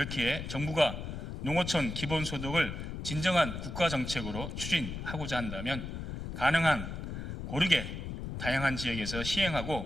정부가 농어촌 기본소득을 진정한 국가정책으로 추진하고자 한다면 가능한 고르게 다양한 지역에서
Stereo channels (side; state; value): left; noise; rumble, 6 dB below the sound